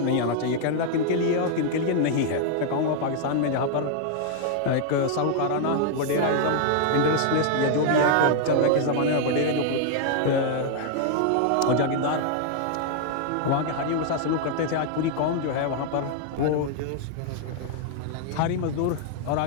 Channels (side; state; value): both; different; correlation 0.00